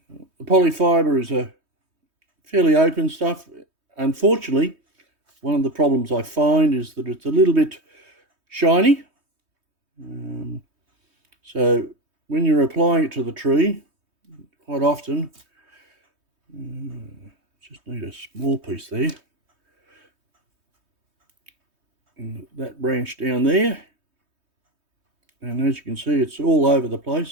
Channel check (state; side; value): late; left; 3.2 ms